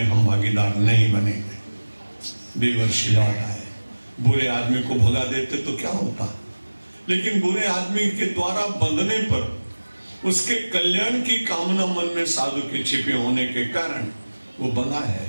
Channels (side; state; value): both; inverted; correlation -1.00